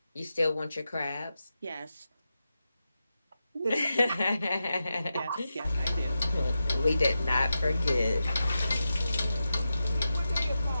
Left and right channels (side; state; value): both; inverted; correlation -0.90